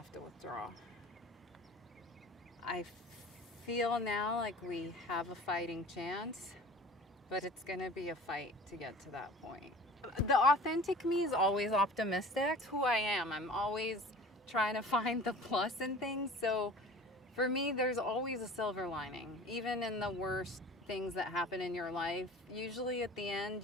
to withdraw. I feel now like we have a fighting chance, but it's gonna be a fight to get to that point. The authentic me is always optimistic. It's who I am. I'm always trying to find the plus in things. So for me, there's always a silver lining. Even in the worst things that happen in your life, usually at the end,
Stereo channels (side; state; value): both; normal; correlation 0.42